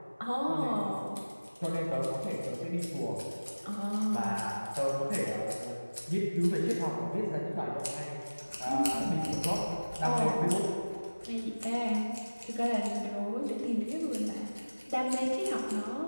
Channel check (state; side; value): inverted; both; correlation -1.00